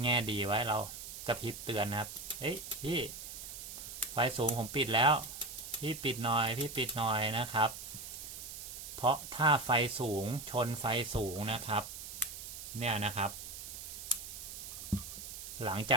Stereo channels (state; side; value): noise; right; hiss, 10 dB below the sound